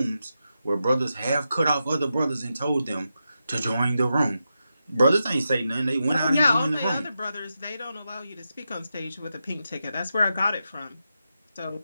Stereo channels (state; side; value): inverted; both; correlation -0.88